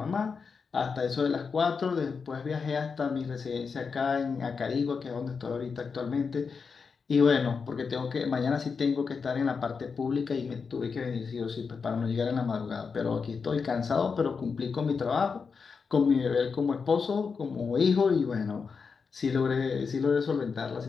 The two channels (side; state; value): right; quieter; 5.4 dB